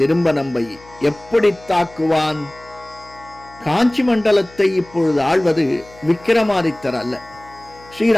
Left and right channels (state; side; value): noise; left; hum, 24 dB below the sound